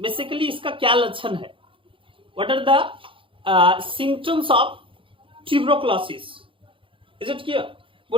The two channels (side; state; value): left; late; 0.25 ms